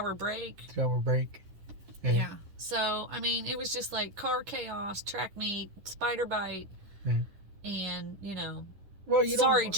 break. 3-hour break. Yeah. So, I mean, it was just like car chaos, track meet, spider bite, and, Well, sorry,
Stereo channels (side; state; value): left; late; 10 ms